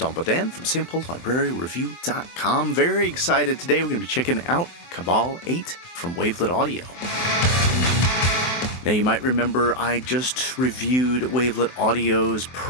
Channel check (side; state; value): right; late; 23 ms